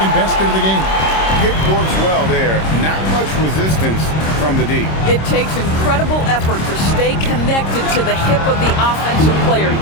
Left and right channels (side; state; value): right; late; 26 ms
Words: basket of the game. Kidd works well there. Not much resistance from the D. It takes incredible effort to stay connected to the hip of the offensive player.